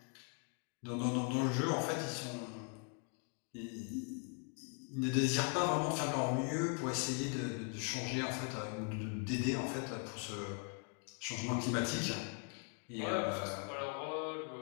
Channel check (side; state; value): right; quieter; 39.7 dB